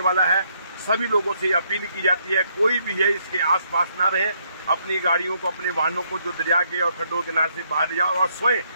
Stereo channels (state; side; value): inverted; both; correlation -0.72